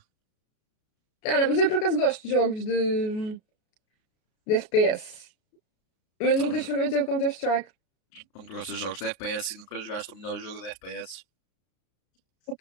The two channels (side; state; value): right; late; 33 ms